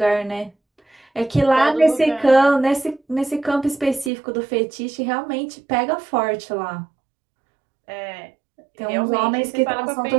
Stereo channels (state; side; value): drops out; left; at 4.1 s